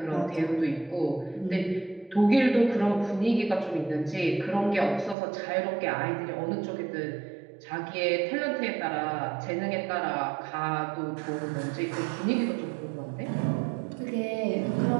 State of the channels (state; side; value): drops out; left; at 5.2 s